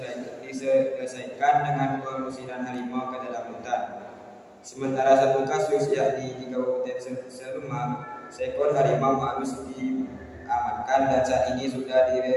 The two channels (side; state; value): both; identical; correlation 1.00